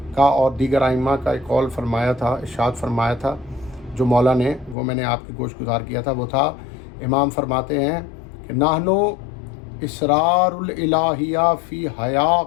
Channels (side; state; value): right; drops out; at 4.8 s